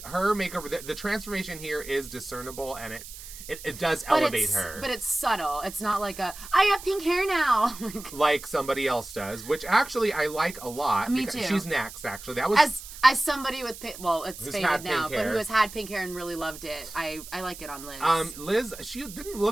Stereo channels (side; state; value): right; noise; hiss, 14 dB below the sound